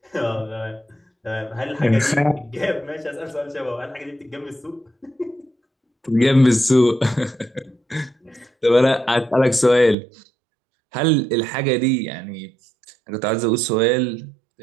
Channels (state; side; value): drops out; left; at 10.0 s